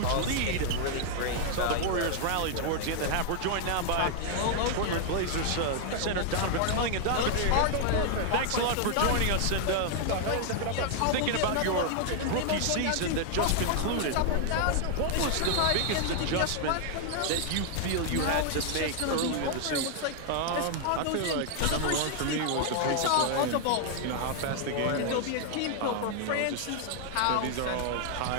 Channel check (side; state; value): both; different; correlation 0.00